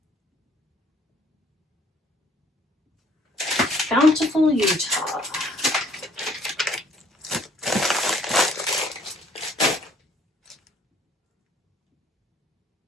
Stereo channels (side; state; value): both; normal; correlation 0.60